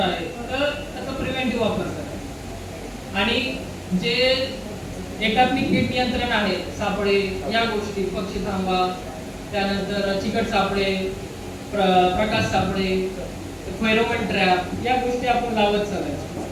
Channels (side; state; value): both; identical; correlation 1.00